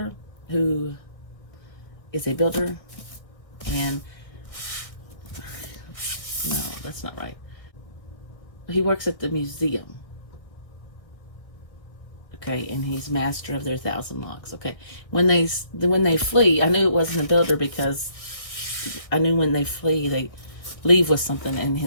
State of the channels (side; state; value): right; late; 1.6 ms